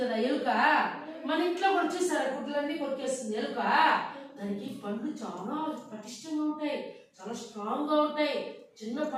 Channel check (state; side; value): identical; both; correlation 1.00